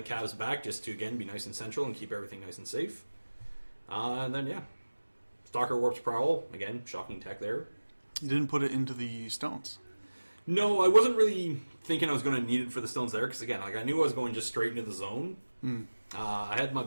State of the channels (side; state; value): both; inverted; correlation -1.00